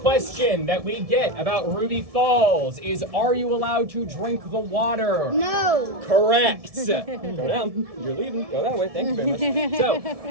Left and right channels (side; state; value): left; late; 1.7 ms